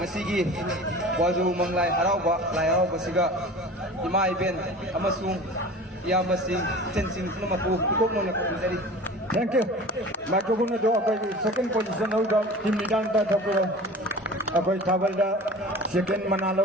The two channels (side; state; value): both; normal; correlation 0.39